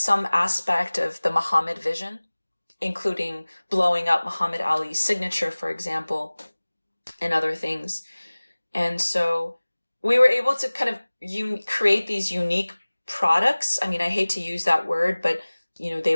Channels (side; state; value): both; inverted; correlation -1.00